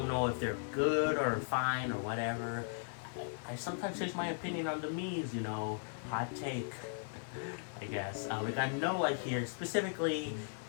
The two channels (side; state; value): right; silent; 53 dB below the other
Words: know if they're good or fine or whatever. I sometimes change my opinion on the Miis, you know. Hot take, I guess. We got Noah here, specifically